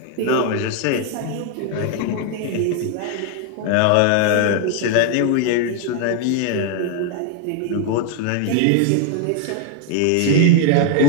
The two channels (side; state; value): both; different; correlation 0.00